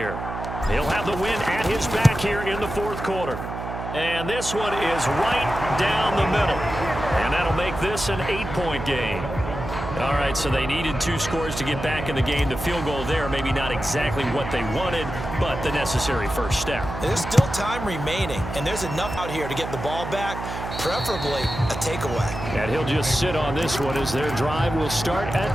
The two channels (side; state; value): right; noise; hum, 7 dB below the sound